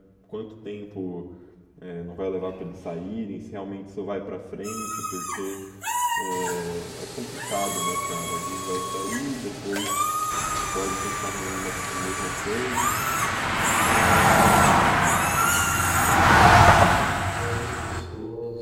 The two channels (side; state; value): both; identical; correlation 1.00